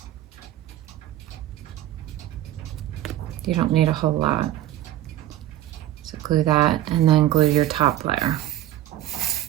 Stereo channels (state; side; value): quieter; left; 13.5 dB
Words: You don't need a whole lot. So glue that, and then glue your top layer.